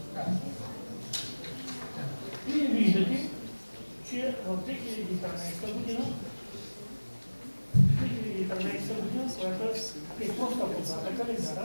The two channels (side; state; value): both; inverted; correlation -1.00